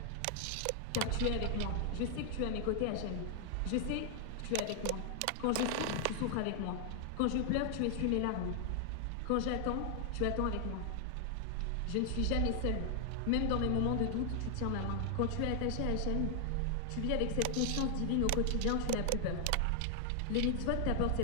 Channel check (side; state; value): both; different; correlation 0.00